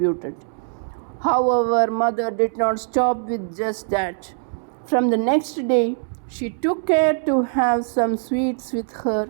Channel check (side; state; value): left; silent; 64 dB below the other